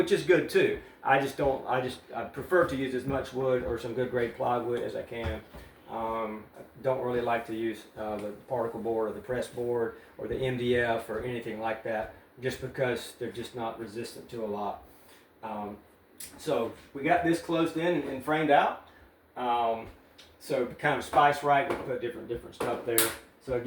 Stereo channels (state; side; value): identical; both; correlation 1.00